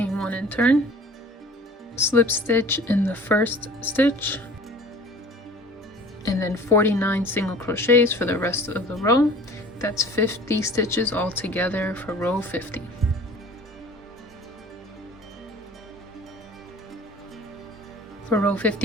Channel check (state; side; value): normal; both; correlation 0.46